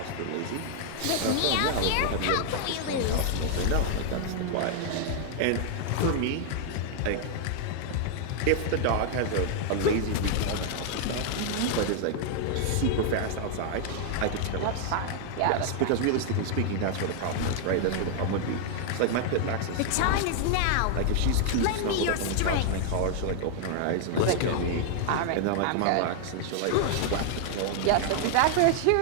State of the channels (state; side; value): different; both; correlation 0.00